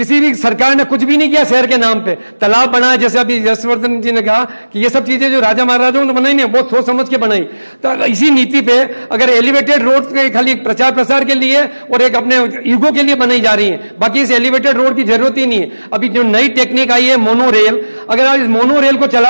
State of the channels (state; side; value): inverted; both; correlation -1.00